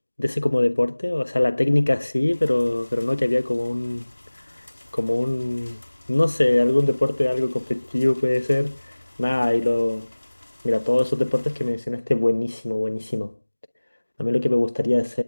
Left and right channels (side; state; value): both; inverted; correlation -1.00